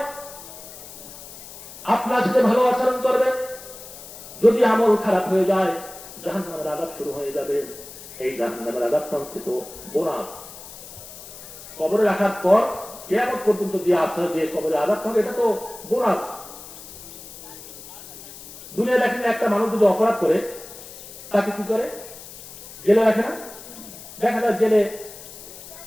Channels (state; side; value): noise; left; hiss, 15 dB below the sound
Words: আপনার সাথে ভালো আচরণ করবে, যদি আমল খারাপ হয়ে যায় জাহান্নামের আযাব শুরু হয়ে যাবে। এই জাহান্নামের আযাবটা হচ্ছে তো বোনাস। কবরে রাখার পর কিয়ামত পর্যন্ত যে আশা যে কবরে আযাব হবে এটা তো বোনাস। দুনিয়া দেখেন একটা মানুষ যদি অপরাধ করে তাকে কি করে? জেলে রাখে না? দেখা যায় জেলে